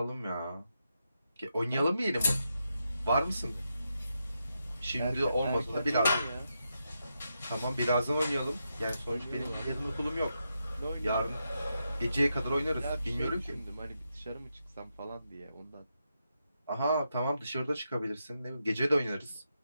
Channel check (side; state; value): both; inverted; correlation -0.85